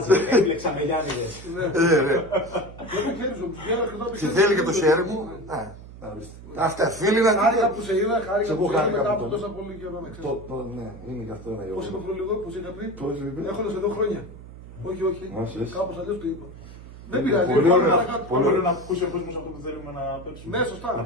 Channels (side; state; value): right; noise; hum, 16 dB below the sound